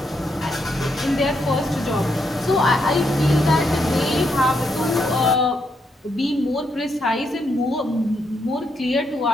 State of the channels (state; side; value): normal; both; correlation 0.79